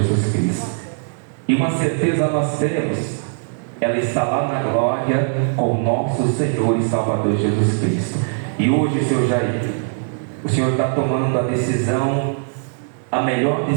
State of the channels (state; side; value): silent; left; digital silence